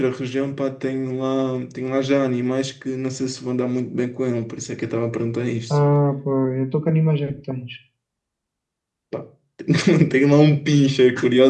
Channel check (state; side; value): identical; both; correlation 1.00